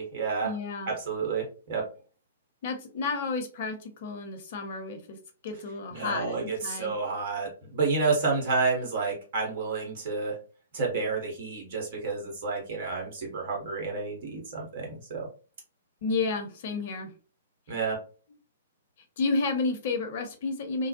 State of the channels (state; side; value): inverted; both; correlation -0.42